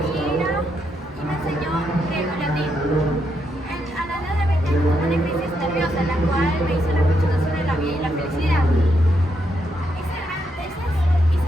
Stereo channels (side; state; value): both; normal; correlation 0.79